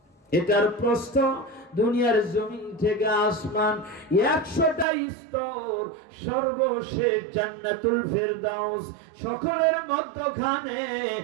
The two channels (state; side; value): drops out; left; at 4.9 s